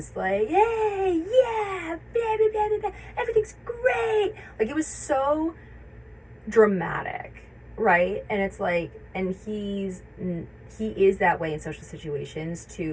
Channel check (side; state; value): both; identical; correlation 1.00